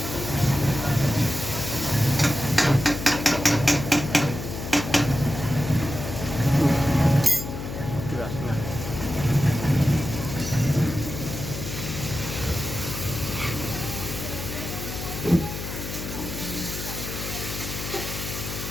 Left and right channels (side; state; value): left; noise; hum, 7 dB below the sound